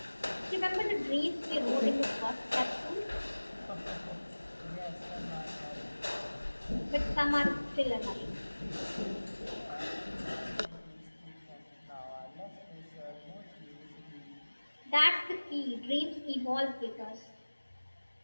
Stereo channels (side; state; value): both; inverted; correlation -1.00